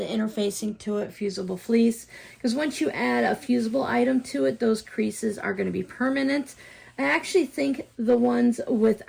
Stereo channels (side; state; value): both; identical; correlation 1.00